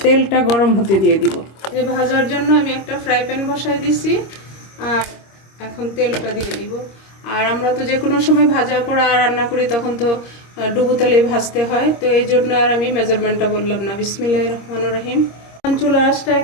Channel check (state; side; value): late; right; 26 ms